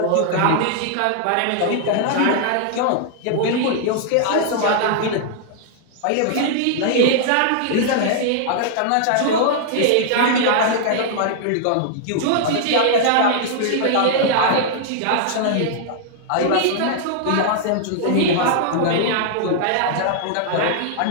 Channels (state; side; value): different; both; correlation -0.01